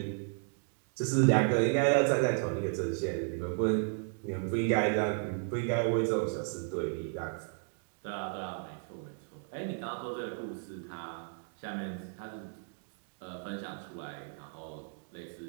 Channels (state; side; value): silent; left; 55 dB below the other